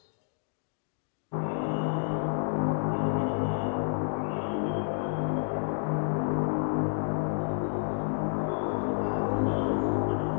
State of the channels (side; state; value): right; silent; digital silence